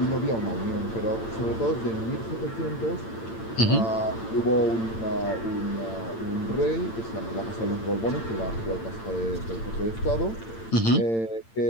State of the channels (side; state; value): right; late; 8.8 ms